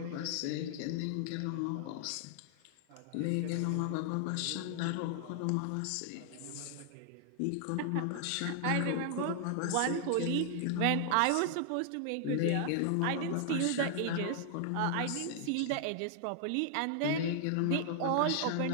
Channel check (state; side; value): different; both; correlation 0.00